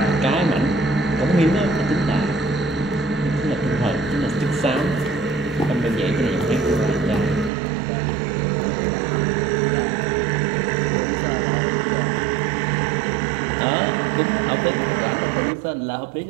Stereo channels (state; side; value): drops out; left; at 7.5 s